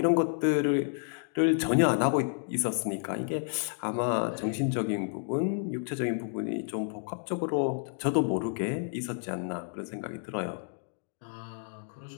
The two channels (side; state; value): right; silent; digital silence